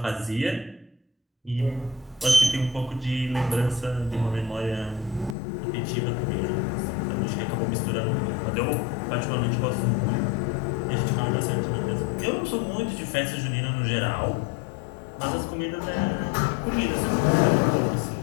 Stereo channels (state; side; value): drops out; right; at 5.4 s